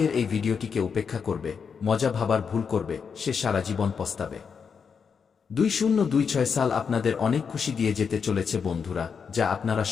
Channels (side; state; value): right; quieter; 6.2 dB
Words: এই ভিডিওটিকে উপেক্ষা করবে, মজা ভাবার ভুল করবে, সে সারা জীবন পস্তাবে। 2026 সাল আপনাদের অনেক খুশি দিয়ে যেতে চলেছে বন্ধুরা, যা আপনারা